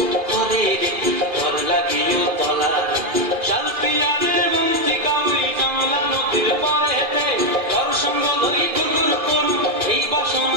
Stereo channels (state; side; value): late; left; 2.4 ms